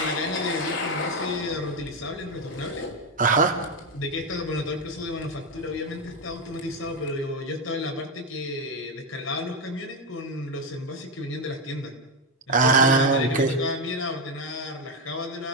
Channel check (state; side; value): normal; both; correlation 0.07